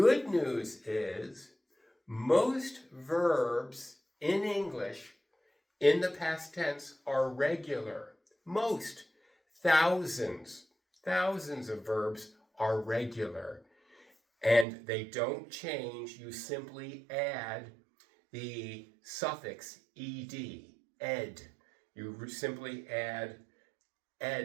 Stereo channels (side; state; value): left; drops out; at 14.7 s